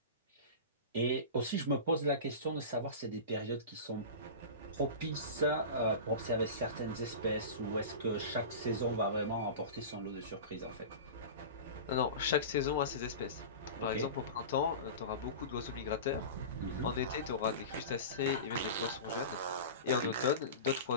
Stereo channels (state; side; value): inverted; both; correlation -0.30